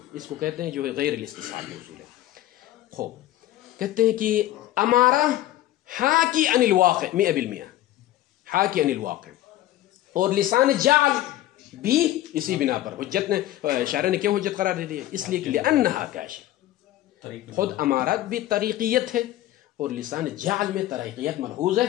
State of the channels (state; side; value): quieter; right; 14.5 dB